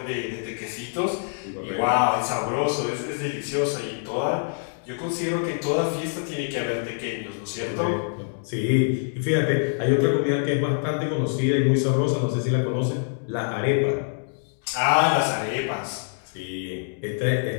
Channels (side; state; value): right; silent; digital silence